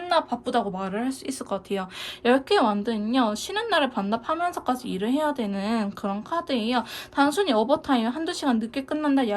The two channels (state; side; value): identical; both; correlation 1.00